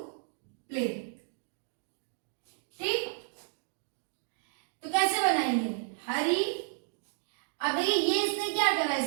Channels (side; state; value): left; silent; digital silence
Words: play. ठीक। देखिए ये इसने क्या करा,